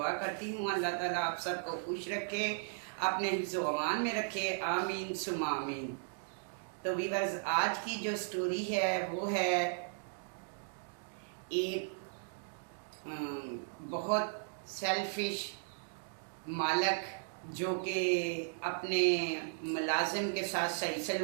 करती हूँ अल्लाह ताला आप सबको खुश रखे, अपने हिफ्ज़ व अमान में रखे, आमीन सुमा आमीन। तो वीवर्स, आज की जो स्टोरी है वो है एक बहुत सेल्फिश मालक जो कि अपने मुलाजिम के साथ सही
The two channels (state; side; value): silent; left; digital silence